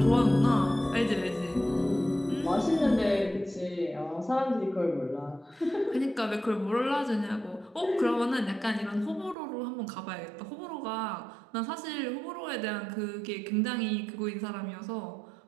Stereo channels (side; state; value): left; drops out; at 9.3 s